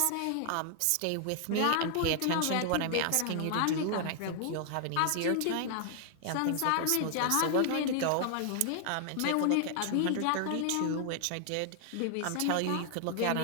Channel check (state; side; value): different; both; correlation 0.00